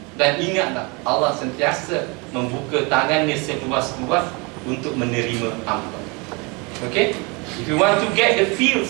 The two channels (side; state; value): left; quieter; 29.0 dB